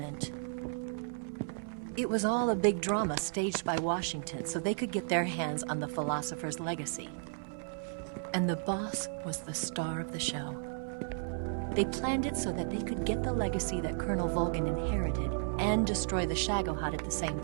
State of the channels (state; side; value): silent; left; 55 dB below the other